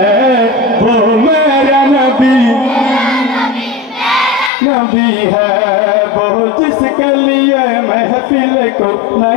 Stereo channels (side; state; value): right; drops out; at 4.5 s